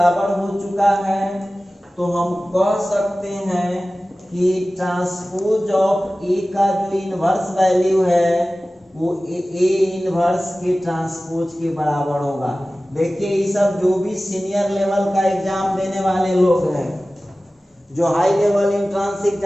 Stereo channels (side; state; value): both; normal; correlation 0.96